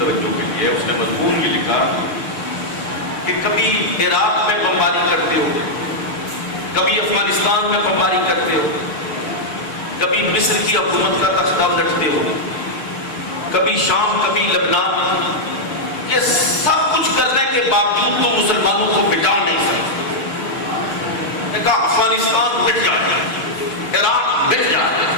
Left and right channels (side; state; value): right; late; 6.7 ms